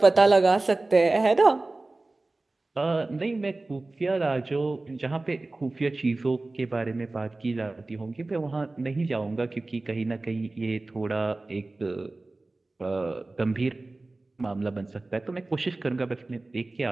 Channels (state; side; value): quieter; left; 3.1 dB